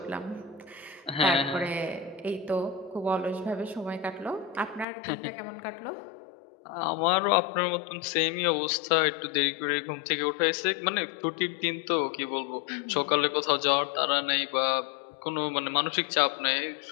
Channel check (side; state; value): right; drops out; at 4.9 s